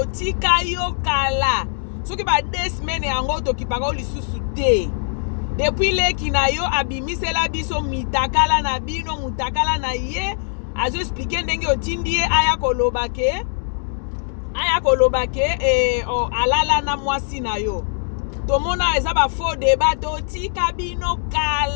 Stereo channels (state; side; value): silent; right; digital silence